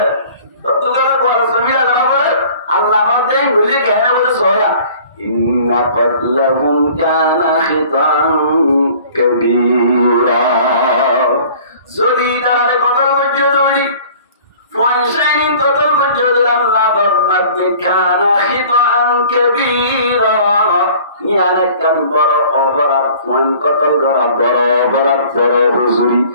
तो तुम्हारा कोई जमीन अल्लाह बोले अल्लाह बोलते हैं बोले कहने बोले सोया إن قتلهم كان خطأ كبيرا যদি তারা কতল মজুদ হইনি ফয়সাইন কতল মজুদ আল্লাহ ফরমাতে কানা খিতাআন কাবীরা ইয়ানে কান বড় অপরাধ ফয়ন কতল করা বড় অপরাধ বড় হুজুরি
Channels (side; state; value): both; inverted; correlation -0.49